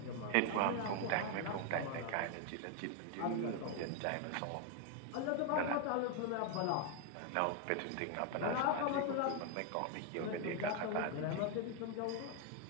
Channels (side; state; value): both; different; correlation 0.01